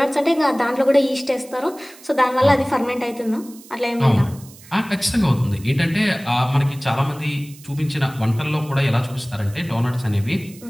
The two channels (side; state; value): right; noise; hiss, 21 dB below the sound